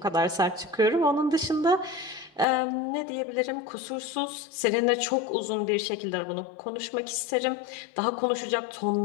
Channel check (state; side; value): drops out; right; at 2.5 s